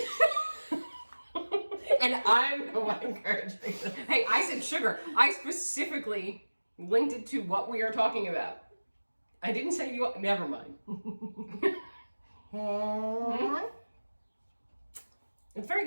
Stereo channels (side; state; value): both; inverted; correlation -1.00